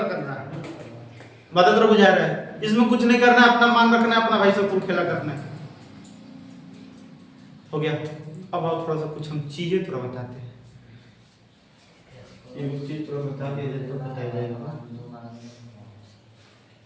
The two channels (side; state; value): both; identical; correlation 1.00